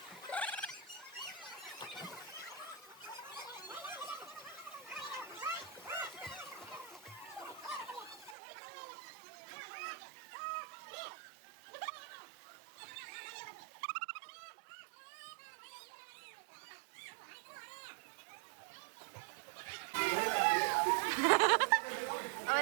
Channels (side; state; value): left; drops out; at 8.3 s